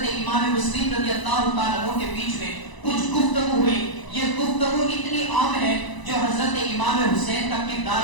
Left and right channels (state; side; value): late; right; 1.0 ms